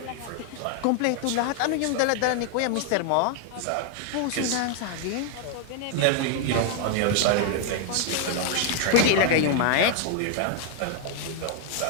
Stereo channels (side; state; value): both; different; correlation 0.00